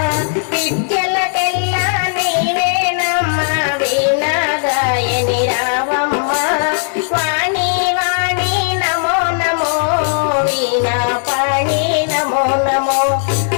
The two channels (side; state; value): right; silent; digital silence